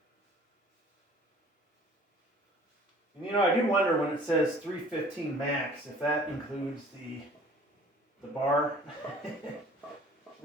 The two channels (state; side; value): normal; both; correlation 0.51